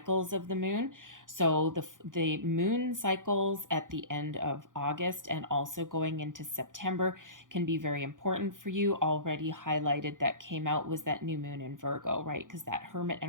of the moon. So the moon cycles at the end of August and also going into September can be very important for you. Already highlighted that came out was that new moon in Virgo, right? Because that hermit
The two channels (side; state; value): left; late; 0.88 ms